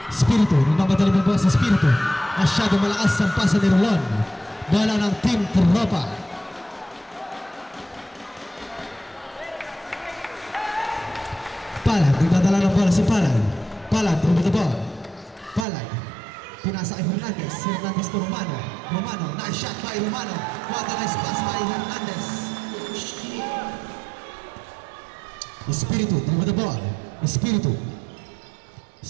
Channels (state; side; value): drops out; left; at 15.7 s